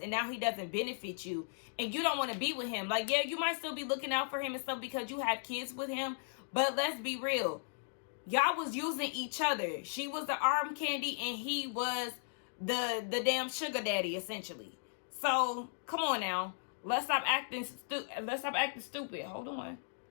now he doesn't benefit you, and you don't want to be with him. Like, yeah, you might still be looking out for him and stuff because you have kids with him, but let's be real. Y'all was using each other. She was the arm candy, and he was the damn sugar daddy, essentially. So, come on now. Let's stop acting stupid. Hold on.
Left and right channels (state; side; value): silent; right; digital silence